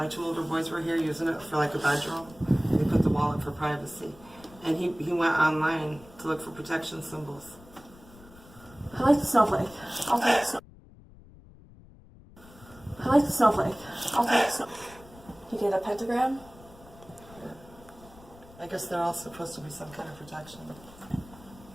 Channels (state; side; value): noise; left; rumble, 22 dB below the sound